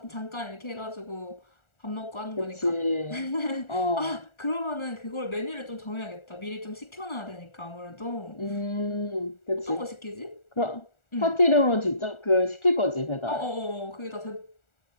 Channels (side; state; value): right; late; 1.4 ms